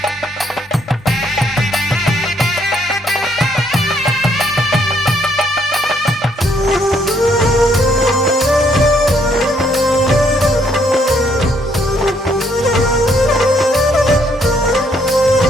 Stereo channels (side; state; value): both; normal; correlation 0.70